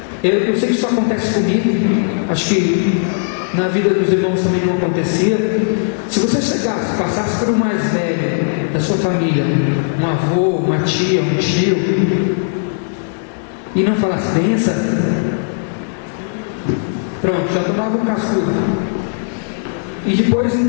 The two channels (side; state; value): right; silent; digital silence